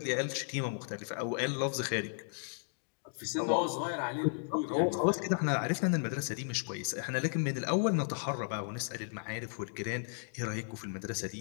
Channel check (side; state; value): right; silent; digital silence